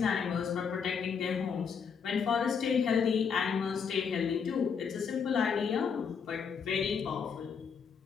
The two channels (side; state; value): right; quieter; 6.4 dB